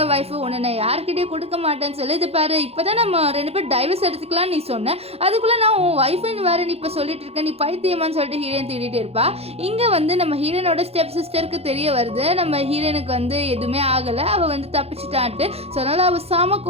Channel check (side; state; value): left; late; 0.29 ms